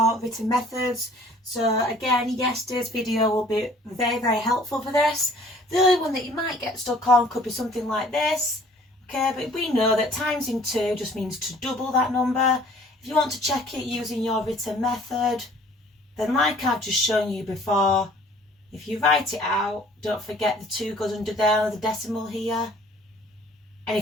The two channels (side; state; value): both; normal; correlation 0.53